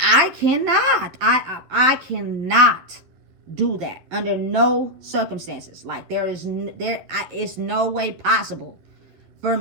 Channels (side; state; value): left; late; 11 ms